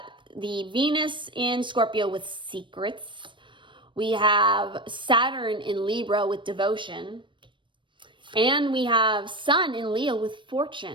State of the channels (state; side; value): late; left; 0.24 ms